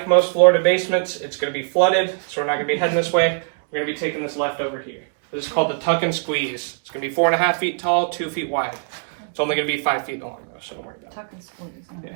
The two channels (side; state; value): left; silent; digital silence